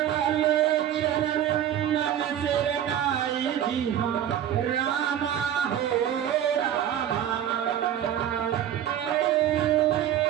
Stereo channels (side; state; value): left; quieter; 10.6 dB